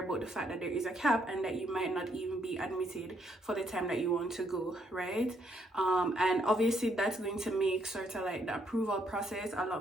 the fact that there is a cap and that you might not even be admitted for the time that you want to go, right? And obviously that's going to make sort of like the approval process a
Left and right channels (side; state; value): both; normal; correlation 0.72